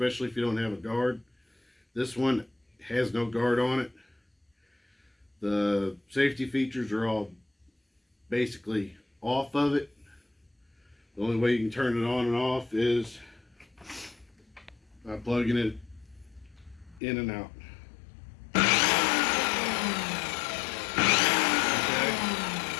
if you don't have a guard. This one has no guard on it. The safety features are all basically off of it. The only way you can turn it on and off is by plugging it in and out.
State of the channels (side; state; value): right; drops out; at 17.0 s